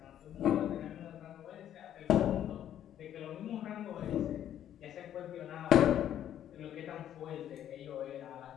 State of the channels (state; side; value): quieter; right; 10.8 dB